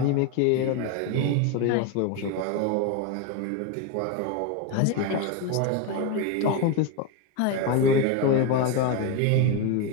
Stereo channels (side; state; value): both; different; correlation 0.03